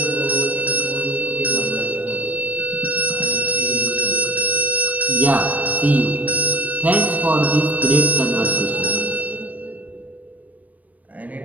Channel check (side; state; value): left; late; 0.073 ms